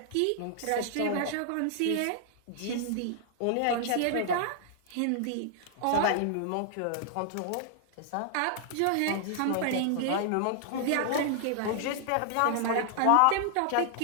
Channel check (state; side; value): different; both; correlation 0.00